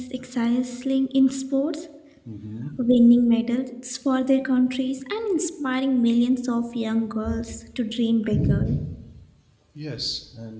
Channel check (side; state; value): both; identical; correlation 1.00